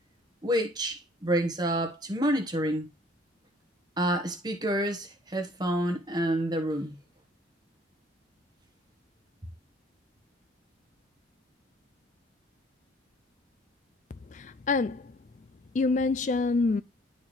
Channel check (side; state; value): both; normal; correlation 0.57